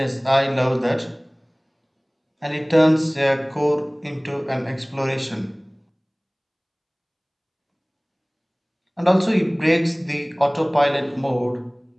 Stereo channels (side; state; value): both; identical; correlation 1.00